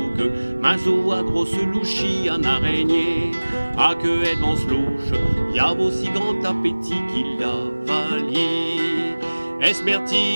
mazou à grosse louchie, en araignée, à que et devant louche, y a aussi grand appétit qu'il avalie.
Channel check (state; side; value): inverted; both; correlation -1.00